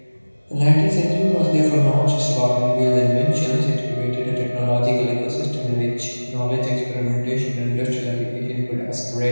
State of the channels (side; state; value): both; inverted; correlation -1.00